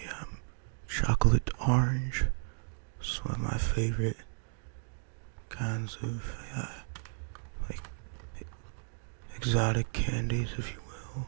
chocolate orange. It's one of my favorite kinds of like exotic candies, if you will.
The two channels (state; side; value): silent; left; digital silence